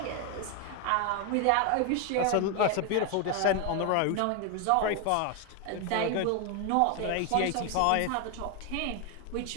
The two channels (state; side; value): different; both; correlation 0.01